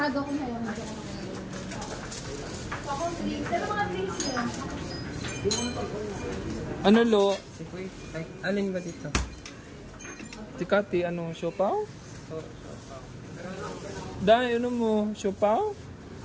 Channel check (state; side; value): identical; both; correlation 1.00